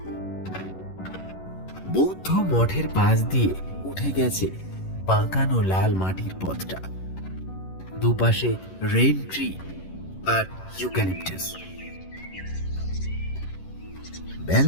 বৌদ্ধ মঠের পাশ দিয়ে উঠে গেছে বাঁকানো লাল মাটির পথটা। দুপাশে রেইন ট্রি আর ইউক্যালিপটাস।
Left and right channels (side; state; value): right; late; 11 ms